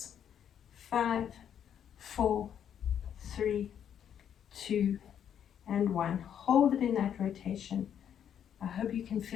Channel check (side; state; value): right; quieter; 9.1 dB